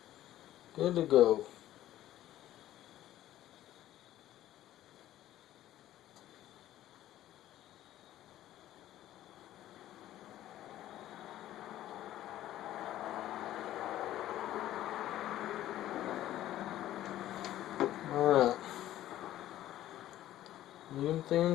Good to go. Alright. Medium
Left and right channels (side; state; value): right; quieter; 13.5 dB